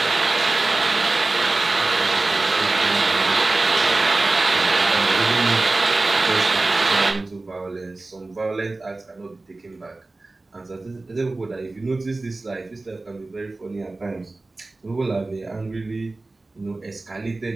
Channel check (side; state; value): left; quieter; 3.2 dB